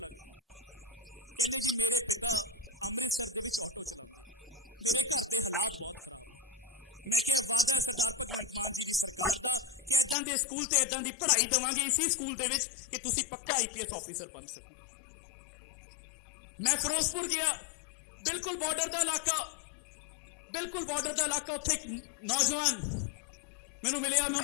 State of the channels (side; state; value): right; drops out; at 10.2 s